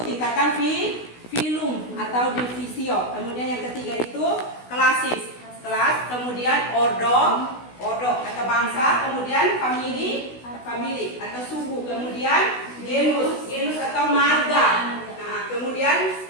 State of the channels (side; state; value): right; late; 16 ms